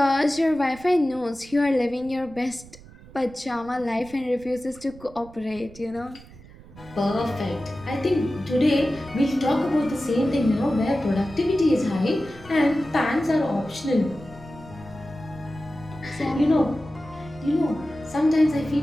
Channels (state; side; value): noise; right; rumble, 20 dB below the sound